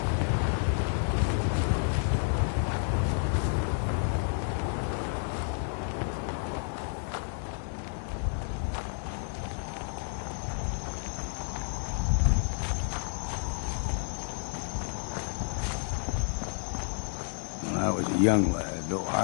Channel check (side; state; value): right; silent; 57 dB below the other